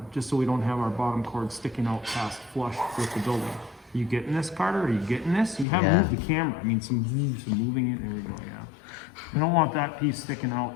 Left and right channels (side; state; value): right; drops out; at 5.7 s